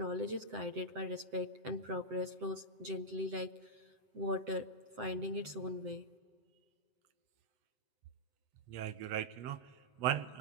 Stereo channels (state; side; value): late; left; 7.8 ms